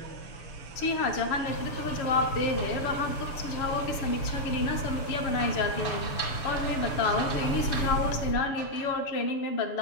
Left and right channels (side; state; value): right; late; 6.8 ms